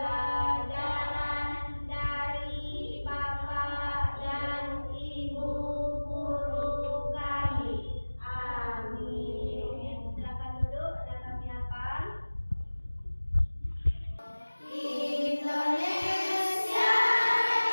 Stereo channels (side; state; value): both; inverted; correlation -1.00